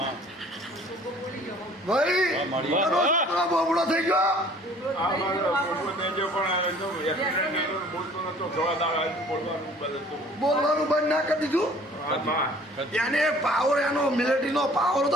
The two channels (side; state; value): both; normal; correlation 0.52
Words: ભાઈ બોબડો થઈ ગયો. બોલવાનું બંધ ના કરી દીધું. એને પાવર, એનો મિલિટરીનો પાવર